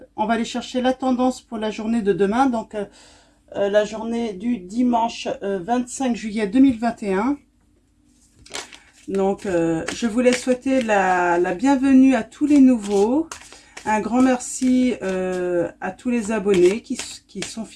va aller chercher la tendance pour la journée de demain, donc la journée du dimanche 25 juillet 2021. Donc je voulais souhaiter la bienvenue à tous les nouveaux. Un grand merci à tous les abonnés qui sont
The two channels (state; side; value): identical; both; correlation 1.00